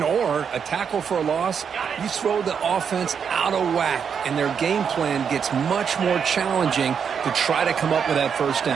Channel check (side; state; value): left; quieter; 7.0 dB